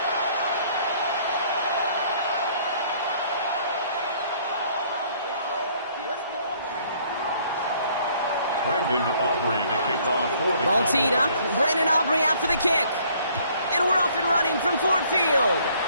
Brandon Aubrey to kick off for the Ball teed up. Brandon Aubrey out for the kick. And we're off and running from Ford Field.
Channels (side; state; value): both; inverted; correlation -0.61